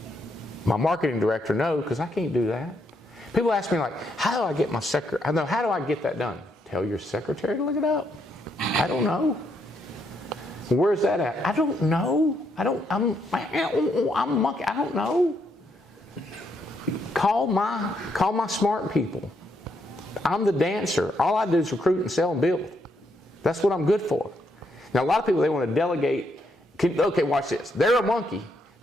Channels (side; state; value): both; normal; correlation 0.76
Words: my marketing director, know, because I can't do that. People ask me like, how do I get my secretary? I know, how do I get that done? Tell your secretary to look it up. I don't know. Where's that at? I don't know. I'm monkey. I don't know. Call my smart people. I'm the dancer. All I do is recruit and sell and build. That's what I'm good for. Now, a lot of people, they want to delegate. Okay, watch this. They're a monkey